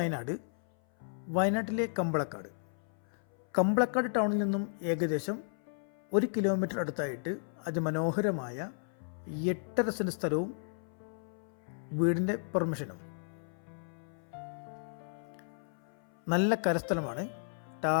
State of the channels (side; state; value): right; silent; 55 dB below the other